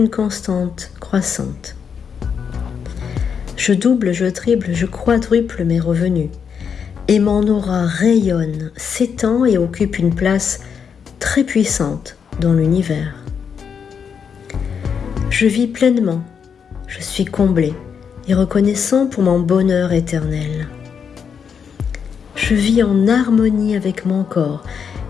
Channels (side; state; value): right; quieter; 6.9 dB